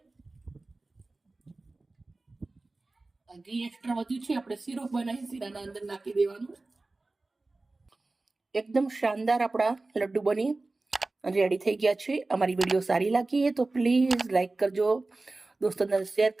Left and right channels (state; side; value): quieter; left; 3.2 dB